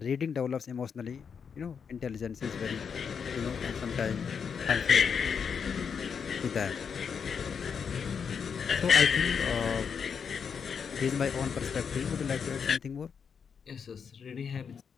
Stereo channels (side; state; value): right; quieter; 6.6 dB